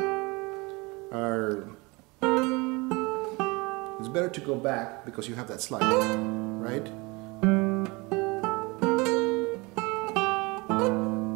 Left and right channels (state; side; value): quieter; left; 25.8 dB